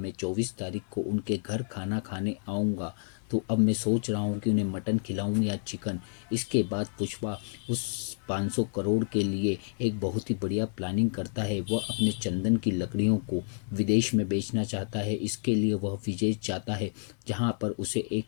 24 तारीख को उनके घर खाना खाने आऊँगा, तो अब मैं सोच रहा हूँ कि उन्हें मटन खिलाऊं या चिकन। इसके बाद पुष्पा उस 500 करोड़ के लिए एक बहुत ही बढ़िया प्लानिंग करता है। वह अपने चंदन की लकड़ियों को विदेश में बेचना चाहता है। इसके लिए वह विदेश जाता है, जहाँ पर उसे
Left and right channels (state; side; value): silent; right; digital silence